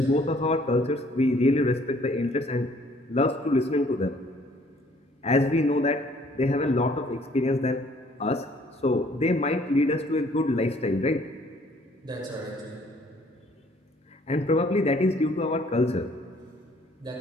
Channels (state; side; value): normal; both; correlation 0.60